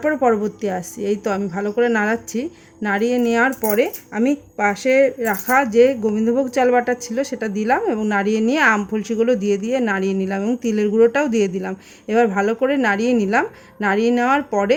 পরবর্তী আসছি। এই তো আমি ভালো করে নাড়াচ্ছি। নাড়িয়ে নেওয়ার পরে আমি পাশে রাখা যে গোবিন্দভোগ চাল বাটা ছিল সেটা দিলাম এবং নাড়িয়ে নিয়ে আম ফলসিগুলো দিয়ে নাড়িয়ে নিলাম এবং তিলের গুঁড়োটাও দিয়ে দিলাম। এবার ভালো করে নাড়িয়ে নিলাম। নাড়িয়ে নেওয়ার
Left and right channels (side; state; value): both; identical; correlation 1.00